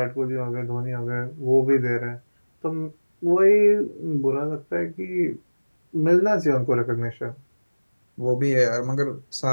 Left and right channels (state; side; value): inverted; both; correlation -1.00